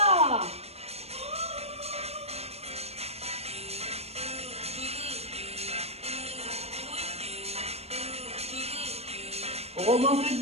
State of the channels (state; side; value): late; left; 0.30 ms